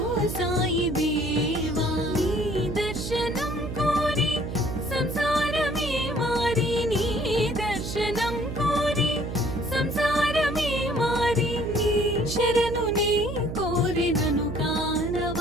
సాయి దేవా నీ దర్శనం కోరి సంసారమే మారి నీ దర్శనం కోరి సంసారమే మారి నీ శరణు నీ కోరినను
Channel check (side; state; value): right; noise; hum, 6 dB below the sound